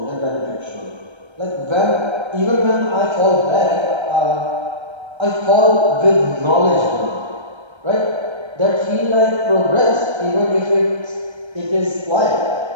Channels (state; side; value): late; left; 1.3 ms